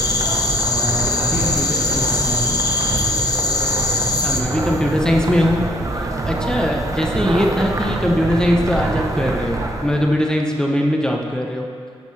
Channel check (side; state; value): both; normal; correlation 0.67